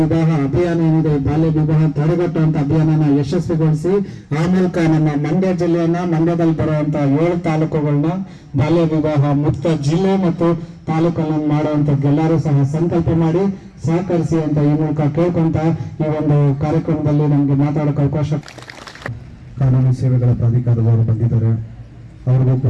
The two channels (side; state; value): both; identical; correlation 1.00